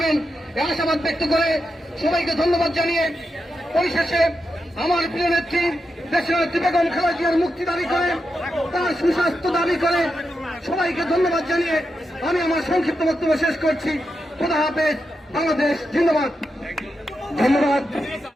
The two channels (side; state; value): both; normal; correlation 0.87